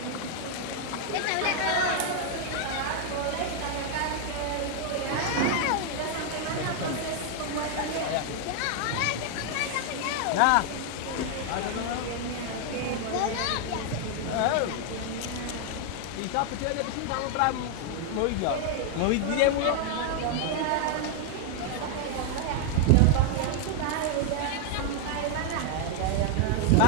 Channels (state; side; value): different; both; correlation 0.00